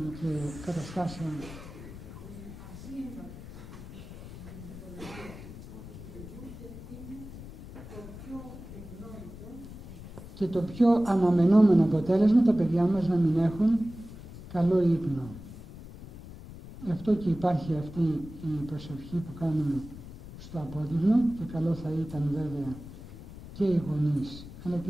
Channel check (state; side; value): noise; left; rumble, 14 dB below the sound